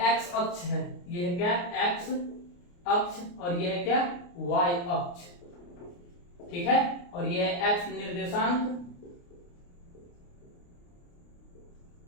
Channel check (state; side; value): late; right; 29 ms